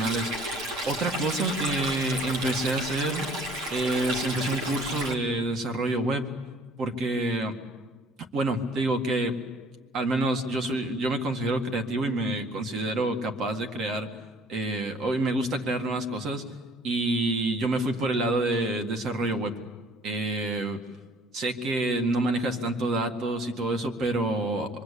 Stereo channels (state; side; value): normal; both; correlation 0.55